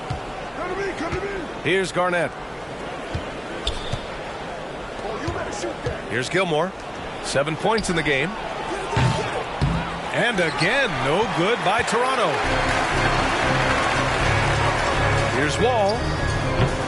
Here's Garnett. Here's Gilmore. 7 points in the game. And again, no good by Toronto. Here's Wall.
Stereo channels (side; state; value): both; identical; correlation 1.00